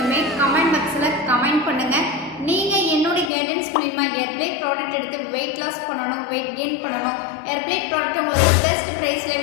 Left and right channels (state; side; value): drops out; right; at 3.3 s